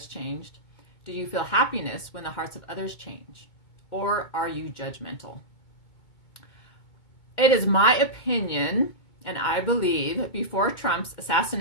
changed? Do you feel happiness when the hearts of others change? Or are you judgmental? It is my opinion, and I believe, before Trump's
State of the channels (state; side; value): late; right; 2.2 ms